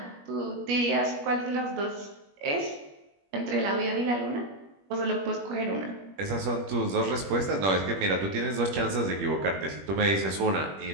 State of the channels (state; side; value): late; left; 21 ms